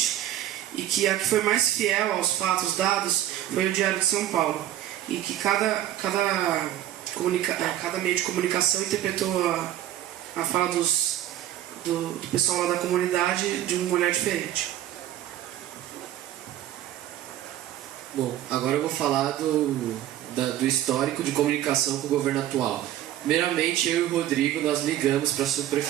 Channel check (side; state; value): left; quieter; 12.6 dB